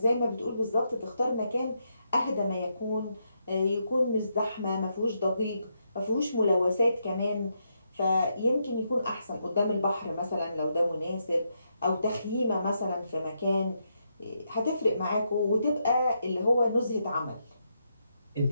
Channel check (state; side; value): inverted; both; correlation -0.81